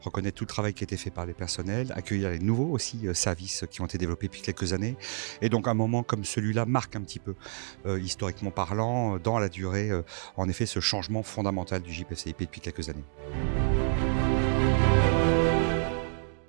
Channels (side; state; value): left; silent; 58 dB below the other